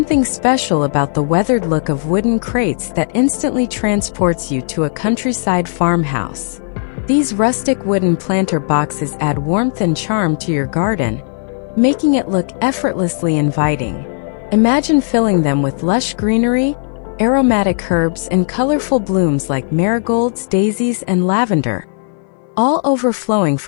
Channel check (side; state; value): right; silent; 57 dB below the other